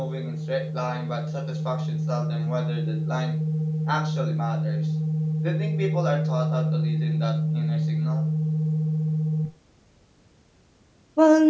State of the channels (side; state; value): both; identical; correlation 1.00